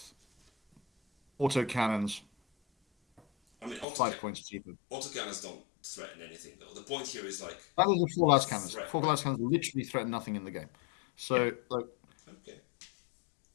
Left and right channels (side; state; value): right; drops out; at 3.9 s